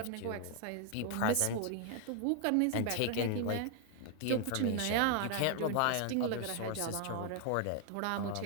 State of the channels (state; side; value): different; both; correlation 0.00